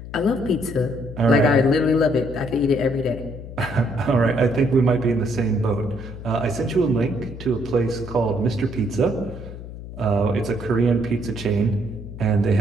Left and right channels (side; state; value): left; noise; hum, 12 dB below the sound